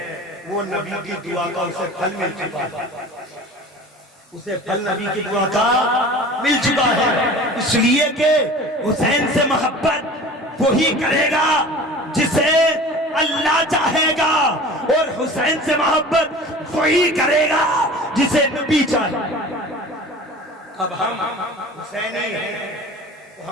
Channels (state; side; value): normal; both; correlation 0.40